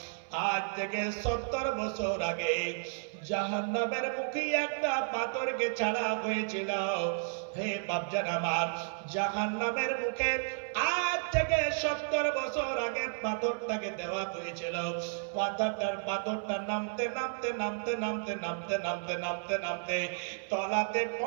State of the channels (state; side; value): silent; left; 56 dB below the other